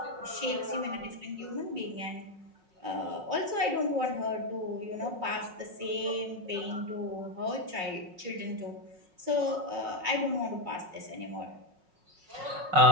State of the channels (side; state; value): left; late; 5.4 ms